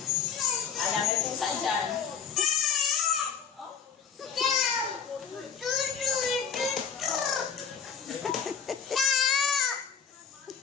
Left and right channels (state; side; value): quieter; right; 7.2 dB